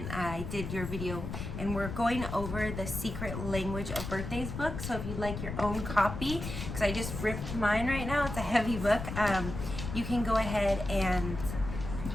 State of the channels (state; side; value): noise; left; rumble, 6 dB below the sound